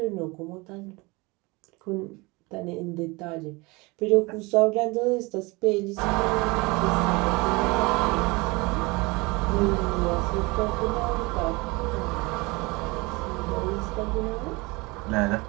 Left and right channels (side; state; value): left; quieter; 24.9 dB